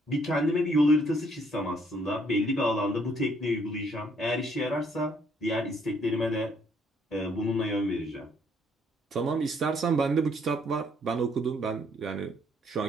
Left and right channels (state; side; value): normal; both; correlation 0.67